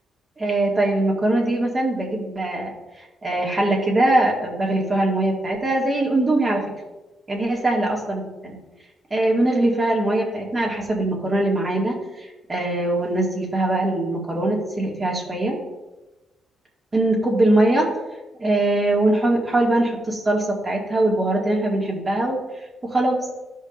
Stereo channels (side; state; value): both; normal; correlation 0.81